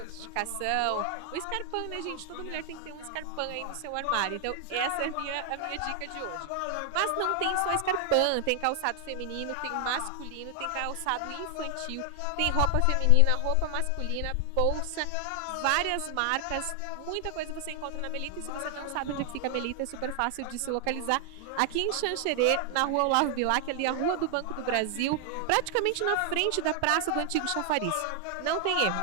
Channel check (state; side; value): different; both; correlation 0.00